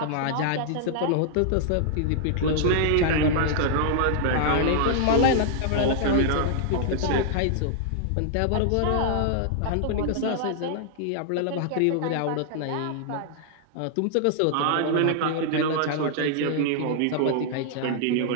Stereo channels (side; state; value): both; different; correlation -0.01